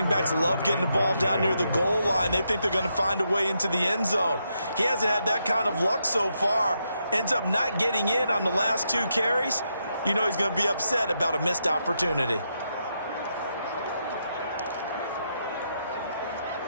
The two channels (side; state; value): both; inverted; correlation -0.81